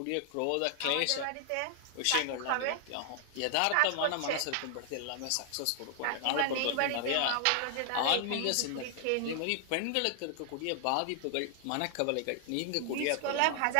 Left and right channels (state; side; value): different; both; correlation 0.00